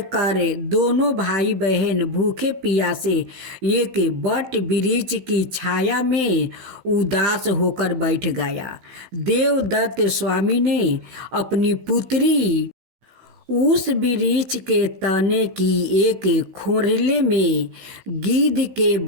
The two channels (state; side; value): late; left; 15 ms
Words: कर दोनों भाई बहन भूखे प्यासे एक बट वृक्ष की छाया में उदास होकर बैठ गया। देवदत्त स्वामी ने अपनी पुत्री उस वृक्ष के तने की एक खोरले में गिद्ध के